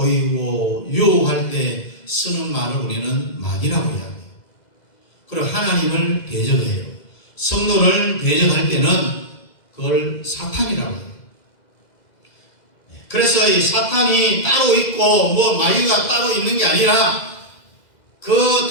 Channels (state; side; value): late; right; 2.0 ms